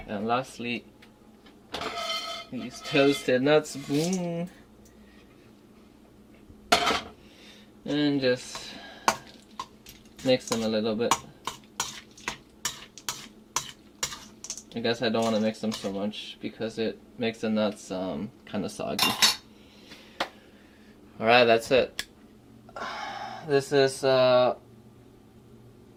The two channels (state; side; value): identical; both; correlation 1.00